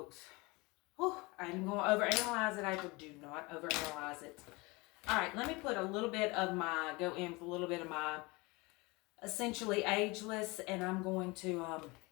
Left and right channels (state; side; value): quieter; right; 25.0 dB